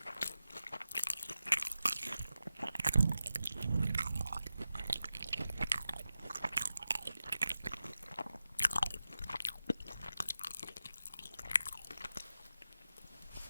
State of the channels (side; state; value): both; inverted; correlation -0.92